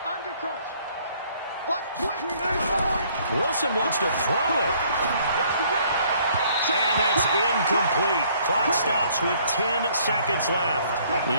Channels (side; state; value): both; inverted; correlation -0.62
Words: Under crunch. Watch quick. Wilson wants to throw it. And that's incomplete. Clock stops with 10 seconds left.